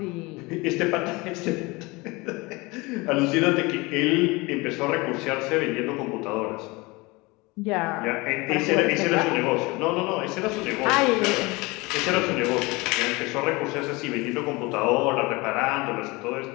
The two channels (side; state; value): right; quieter; 24.1 dB